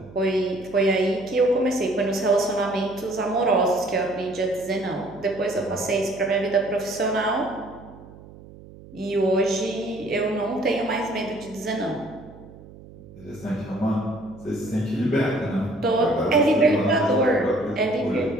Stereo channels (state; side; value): noise; right; hum, 19 dB below the sound